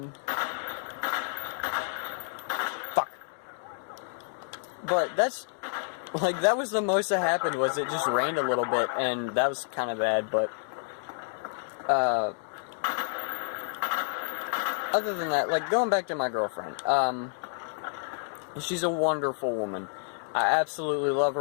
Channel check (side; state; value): right; silent; digital silence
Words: But that was the most that happened, was it just rained a little bit, and that was kind of bad, but, other than that, like, going back to my girlfriend, she's a wonderful woman. I absolutely love